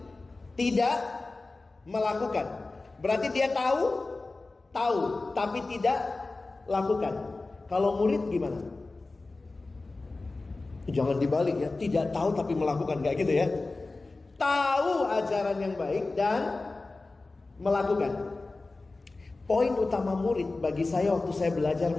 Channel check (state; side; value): quieter; right; 3.4 dB